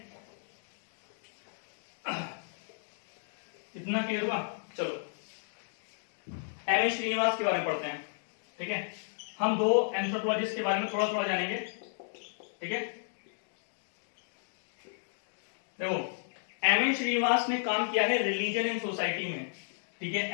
इतना क्लियर हुआ? चलो एम एस श्रीनिवास के बारे में पढ़ते हैं, ठीक है। हम 2 एंथ्रोपोलॉजिस्ट के बारे में थोड़ा थोड़ा जानेंगे, ठीक है। देखो, एम एन श्रीनिवास ने काम किया है रिलीजन एंड सोसाइटी में, ठीक है।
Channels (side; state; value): right; silent; digital silence